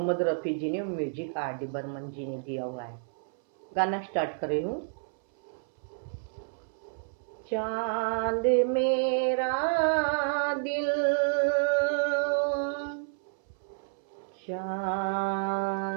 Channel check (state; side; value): silent; left; 58 dB below the other